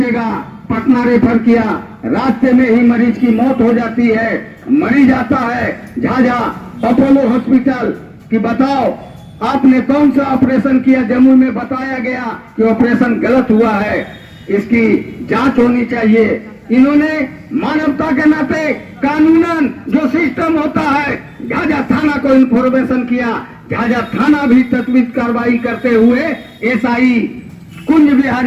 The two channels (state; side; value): identical; both; correlation 1.00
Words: पटना रेफर किया। रास्ते में ही मरीज की मौत हो जाती है। मरीज आता है झाझा अपोलो हॉस्पिटल कि बताओ आपने कौन सा ऑपरेशन किया। जम्मू में बताया गया कि ऑपरेशन गलत हुआ है, इसकी जांच होनी चाहिए। इन्होंने मानवता के नाते कानूनन जो सिस्टम होता है, झाझा थाना को इन्फॉर्मेशन किया। झाझा थाना भी तत्वित कार्रवाई करते हुए एसआई कुंज